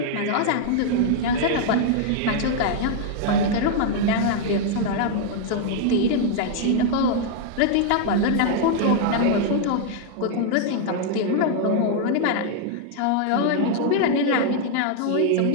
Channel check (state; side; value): different; both; correlation -0.01